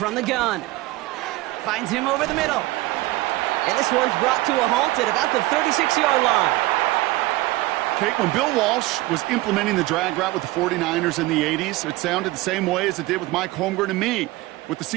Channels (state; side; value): quieter; left; 19.2 dB